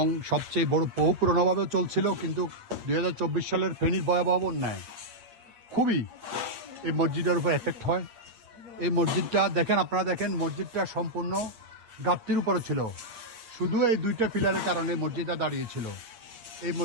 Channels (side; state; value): left; late; 8.7 ms